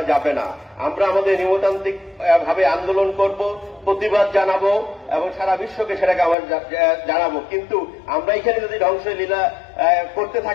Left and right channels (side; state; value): right; drops out; at 6.4 s